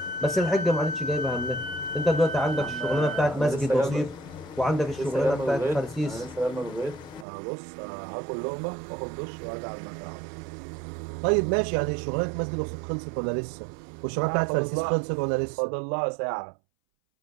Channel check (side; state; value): left; drops out; at 7.2 s